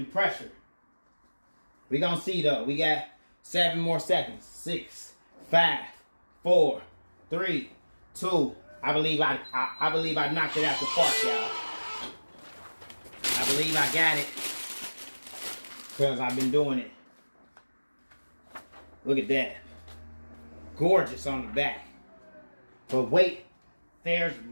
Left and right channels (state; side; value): inverted; both; correlation -1.00